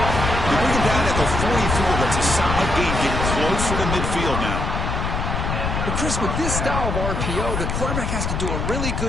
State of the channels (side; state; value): left; noise; rumble, 2 dB below the sound